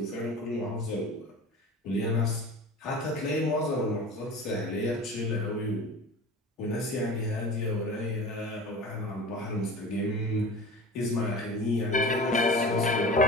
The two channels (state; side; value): normal; both; correlation 0.35